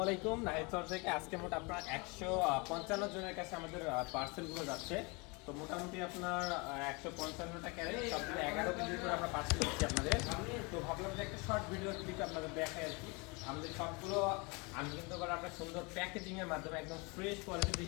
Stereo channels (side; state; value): right; quieter; 29.0 dB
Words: আলাইকুম। নাহিদ স্যার থেকে আজকে মোট আপনার 155 জনের কাছে আমাদের পার্সেলগুলো যাচ্ছে। তো মোটামুটি আপনার 155টা ক্যারেট সবগুলো 11 কেজি করে আমরা পার্সেল দিচ্ছি আপনাদের। তো ভাবলাম যে একটা শর্ট ভিডিও ক্লিপ আপনাদের দেখাই আর কি। আমাদের সবগুলো আমি কিন্তু আবার আপনার সুন্দর প্যাকেজিংয়ের মাধ্যমে একদম ফ্রেশ